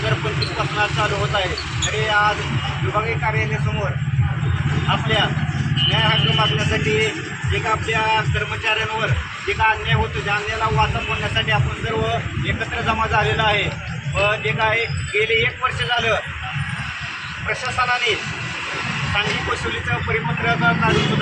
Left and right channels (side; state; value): both; identical; correlation 1.00